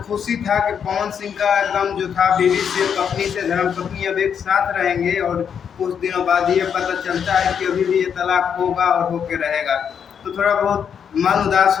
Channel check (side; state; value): right; quieter; 7.6 dB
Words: खुशी था कि पवन सिंह का एकदम जो था बीवी से, पत्नी से, धर्मपत्नी अब एक साथ रहेंगे, और कुछ दिनों बाद ये पता चलता है कि अभी भी ये तलाक होगा और होके रहेगा, तो थोड़ा बहुत मन उदास